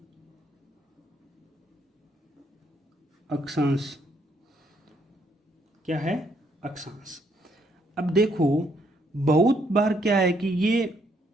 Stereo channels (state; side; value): normal; both; correlation 0.72